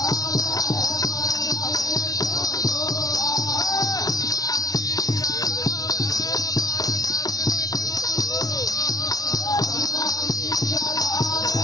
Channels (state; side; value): late; right; 0.18 ms